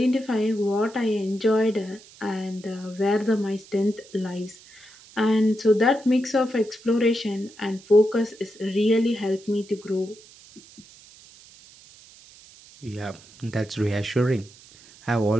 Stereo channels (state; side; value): noise; right; hiss, 23 dB below the sound